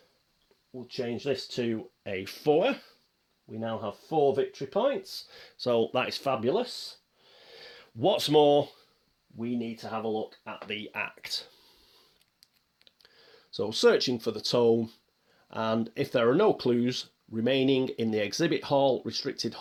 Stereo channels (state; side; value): identical; both; correlation 1.00